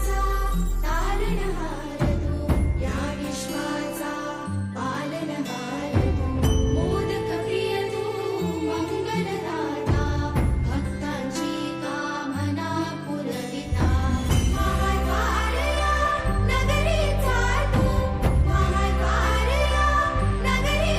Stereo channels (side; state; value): both; identical; correlation 1.00